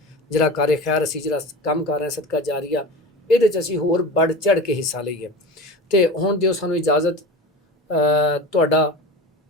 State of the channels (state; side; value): normal; both; correlation 0.32